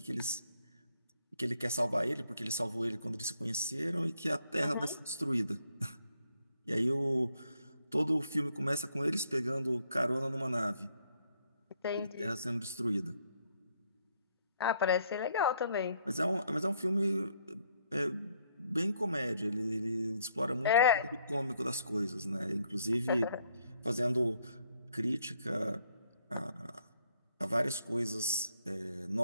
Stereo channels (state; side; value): inverted; both; correlation -0.71